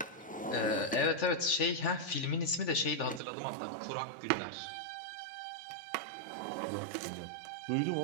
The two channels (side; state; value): left; drops out; at 3.2 s